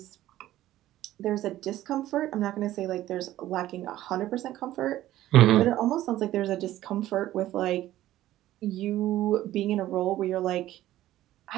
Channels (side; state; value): left; quieter; 14.4 dB